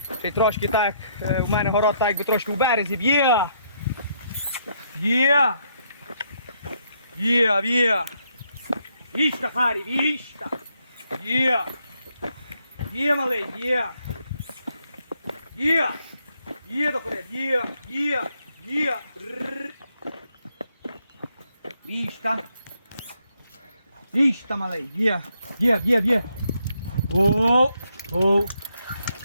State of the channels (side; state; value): both; inverted; correlation -0.74